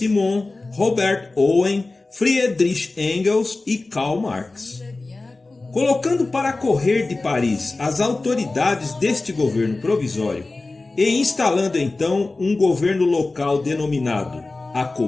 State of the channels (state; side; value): quieter; right; 3.3 dB